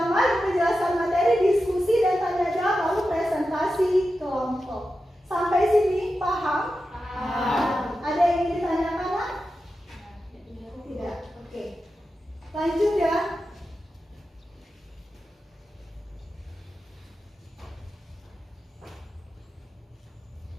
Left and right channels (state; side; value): normal; both; correlation 0.91